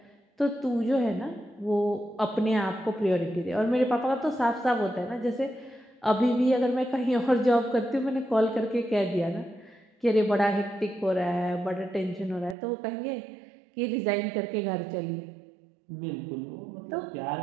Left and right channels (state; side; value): drops out; left; at 12.6 s